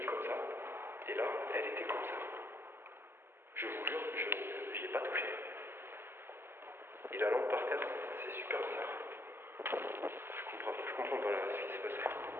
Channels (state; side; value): late; left; 0.11 ms